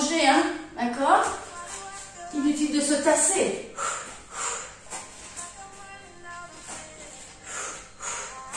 hein. D'accord? Inutile de se tasser.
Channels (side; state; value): both; identical; correlation 1.00